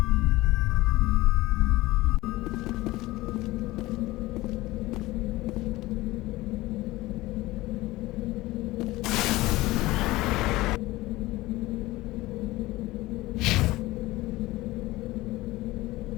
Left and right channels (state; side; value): quieter; right; 18.9 dB